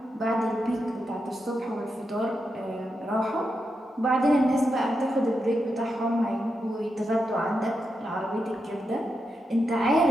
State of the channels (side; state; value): both; normal; correlation 0.86